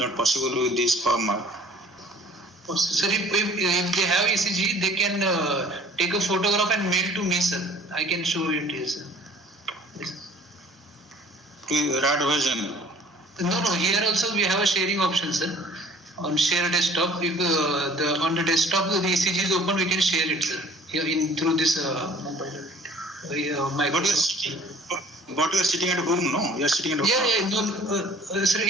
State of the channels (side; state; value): both; normal; correlation 0.51